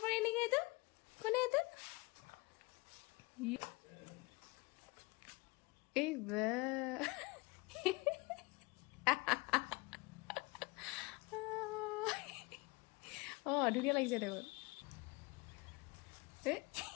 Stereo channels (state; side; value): quieter; right; 25.3 dB